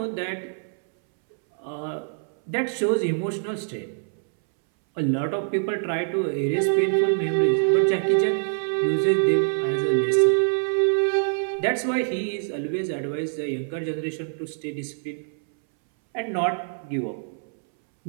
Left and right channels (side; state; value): left; silent; 62 dB below the other